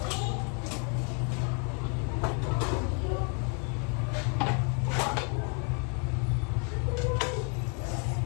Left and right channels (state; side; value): quieter; right; 39.2 dB